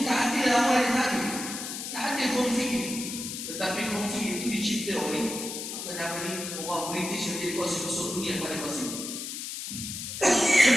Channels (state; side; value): noise; left; hiss, 6 dB below the sound